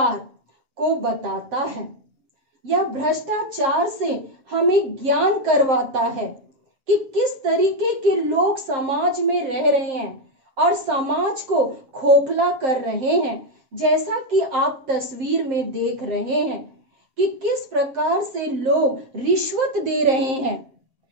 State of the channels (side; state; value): left; late; 7.6 ms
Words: को बताता है, या भ्रष्टाचार से हमें ज्ञान करवाता है कि किस तरीके के लोग समाज में रह रहे हैं और समाज को खोखला कर रहे हैं। जैसा कि आप तस्वीर में देख रहे हैं कि किस प्रकार से लोग रिश्वत दे रहे हैं,